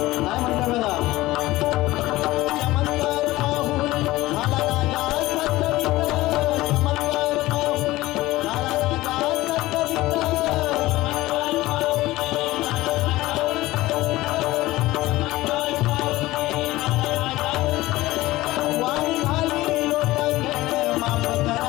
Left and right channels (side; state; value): right; quieter; 18.0 dB